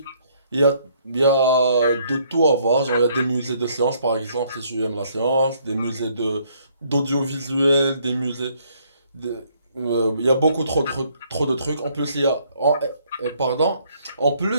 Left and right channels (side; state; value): both; inverted; correlation -0.66